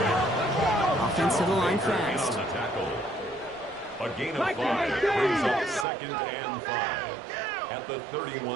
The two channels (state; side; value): drops out; left; at 5.9 s